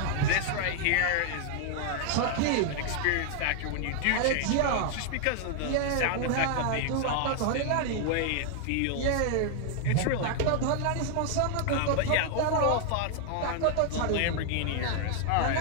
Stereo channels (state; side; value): different; both; correlation 0.00